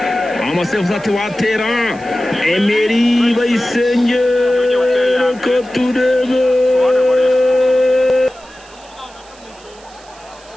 amasevuza ati watera Emery Bayisenge ko turebe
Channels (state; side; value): noise; right; hiss, 25 dB below the sound